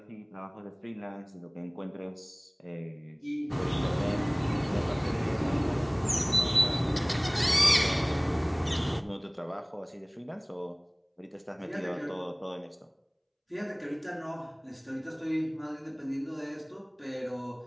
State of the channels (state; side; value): identical; both; correlation 1.00